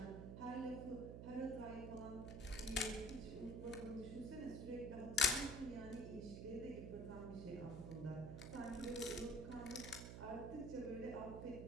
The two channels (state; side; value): noise; right; hum, 7 dB below the sound